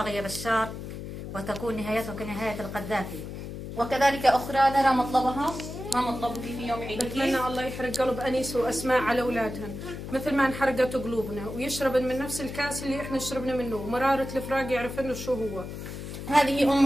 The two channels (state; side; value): noise; left; hum, 9 dB below the sound